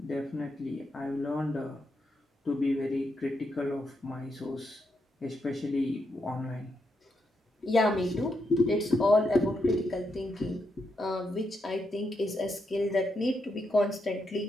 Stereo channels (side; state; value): both; normal; correlation 0.82